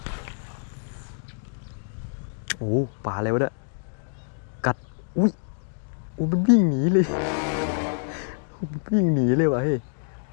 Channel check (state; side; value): silent; right; 61 dB below the other